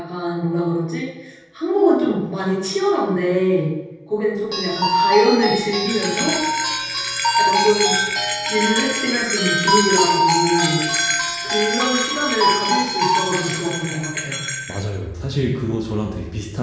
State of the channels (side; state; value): both; identical; correlation 1.00